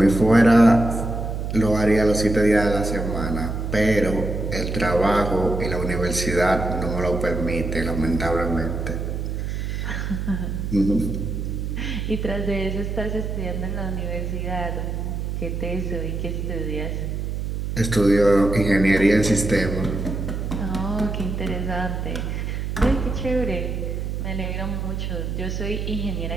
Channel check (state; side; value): noise; right; hum, 3 dB below the sound